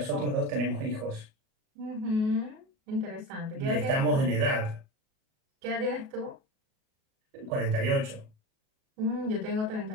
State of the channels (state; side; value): late; left; 37 ms